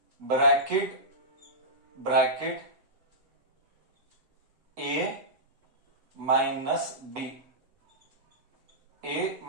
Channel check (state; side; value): late; left; 8.1 ms